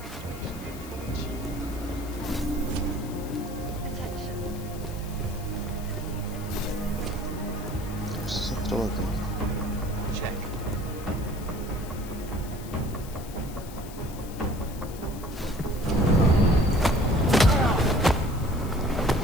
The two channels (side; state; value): left; noise; hiss, 17 dB below the sound